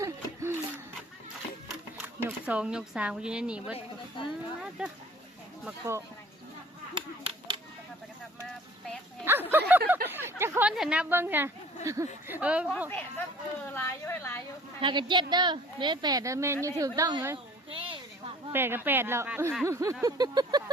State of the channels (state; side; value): normal; both; correlation 0.49